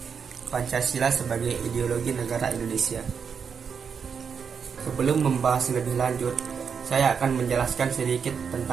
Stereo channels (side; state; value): left; quieter; 6.5 dB